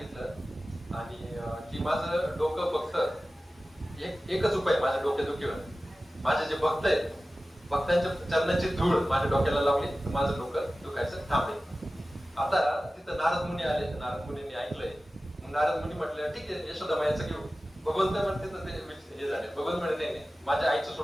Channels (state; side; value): normal; both; correlation 0.96